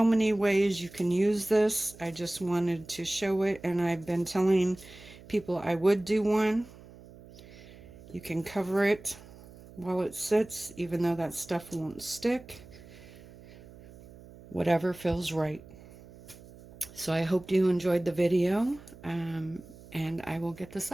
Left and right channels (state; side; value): noise; right; hum, 20 dB below the sound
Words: many ways you can use this. I just wanted to show it, and I've been telling people I would do one. You can cover it while it sits, even though that stuff won't stick. Whatever feels right. So I hope you enjoyed the video, and I will get this